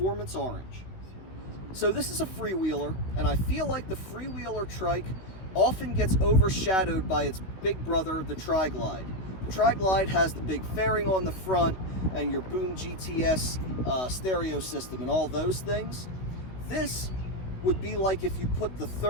Orange. So this is a Freewheeler, and I feel like the Freewheeler trike often gets overshadowed by its big brother, the Tri-Glide. The Tri-Glide has the big fairing on the front and your Boom GTS stereo system and all those things. This would be like if you put the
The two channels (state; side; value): late; right; 16 ms